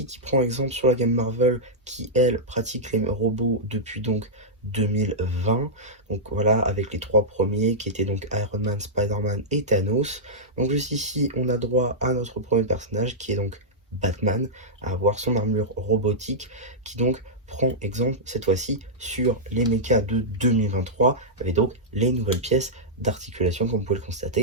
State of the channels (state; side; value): normal; both; correlation -0.10